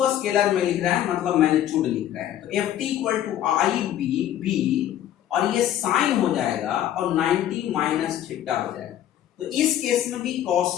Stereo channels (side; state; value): right; quieter; 11.6 dB